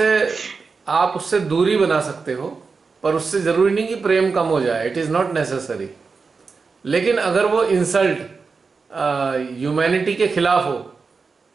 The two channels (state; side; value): quieter; left; 4.8 dB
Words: उससे दूरी बना सकते हो, पर उससे जरूरी नहीं कि प्रेम कम हो जाए। It is not necessary. लेकिन अगर वो इंसल्ट ह्यूमैनिटी के खिलाफ हो